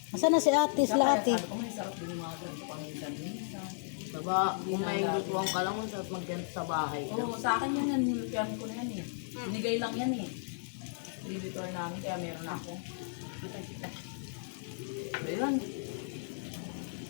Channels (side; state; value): right; silent; 55 dB below the other